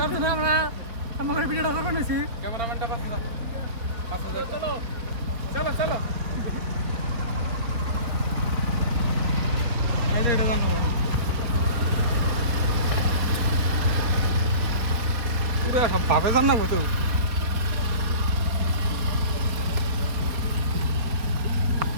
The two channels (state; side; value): late; left; 4.2 ms